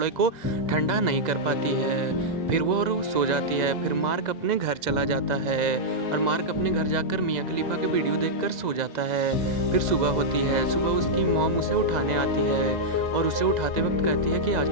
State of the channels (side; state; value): left; late; 2.0 ms